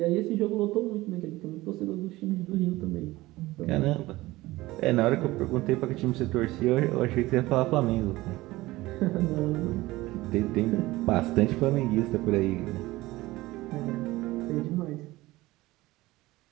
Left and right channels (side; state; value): left; quieter; 18.8 dB